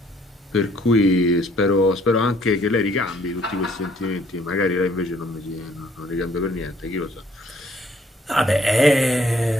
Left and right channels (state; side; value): normal; both; correlation 0.62